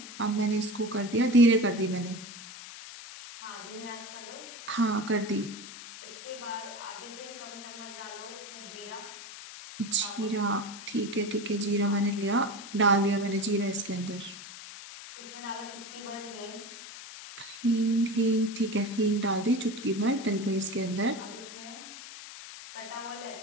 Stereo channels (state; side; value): noise; left; hiss, 13 dB below the sound